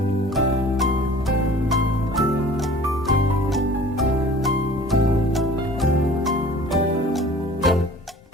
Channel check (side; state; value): both; normal; correlation 0.46